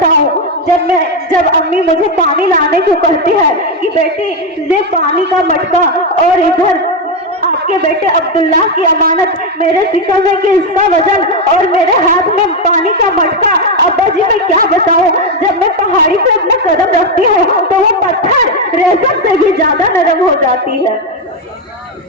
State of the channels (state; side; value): normal; both; correlation 0.07